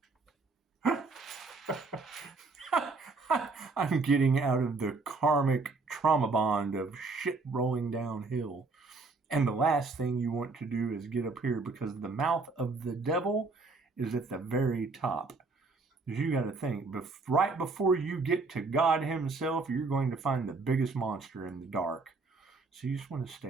I'm getting out of the karmic trauma bond of shit rolling downhill. And the last thing you want to do is get up here, because the mouth of the devil is at the very top. Because you got to think, right before you get to God himself, you're going to find the biggest monster in the dark. So you just want to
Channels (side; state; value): left; quieter; 3.9 dB